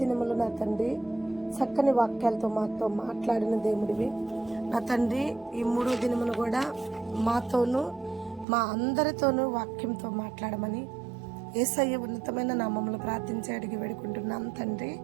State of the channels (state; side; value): drops out; left; at 8.5 s